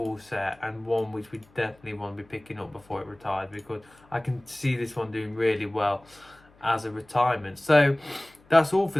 set, and one which we definitely want to be picking up before it retires, because I can see this one doing really well as a retirement. So that's all for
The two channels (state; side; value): noise; left; hum, 29 dB below the sound